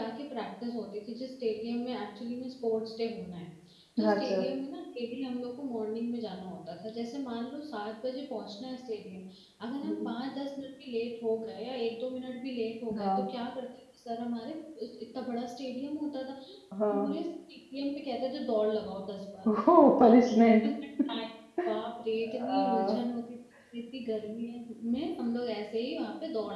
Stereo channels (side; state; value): both; identical; correlation 1.00